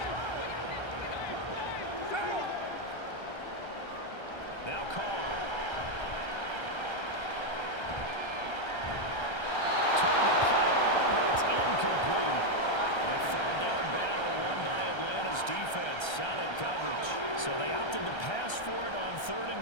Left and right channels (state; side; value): late; right; 1.3 ms